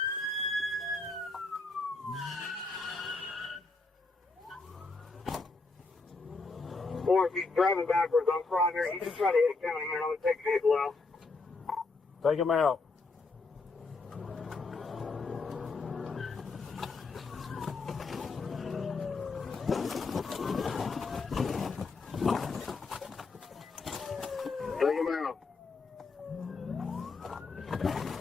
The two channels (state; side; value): quieter; right; 3.9 dB